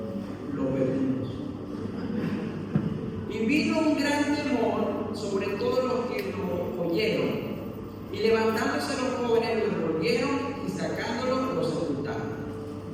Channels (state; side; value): identical; both; correlation 1.00